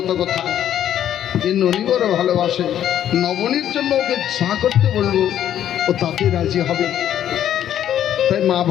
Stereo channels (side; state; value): right; quieter; 10.8 dB